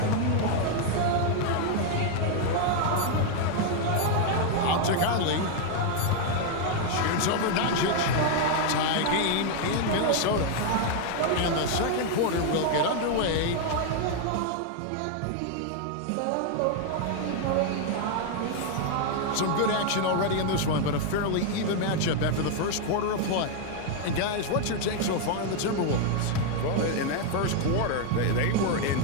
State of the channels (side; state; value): both; different; correlation 0.00